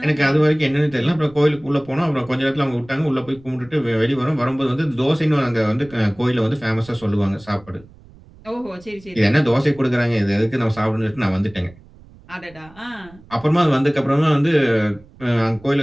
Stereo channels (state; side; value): noise; right; rumble, 24 dB below the sound